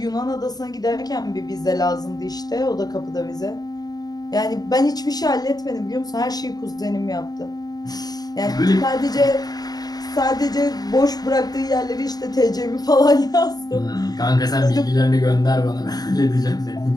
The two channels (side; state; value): right; late; 0.19 ms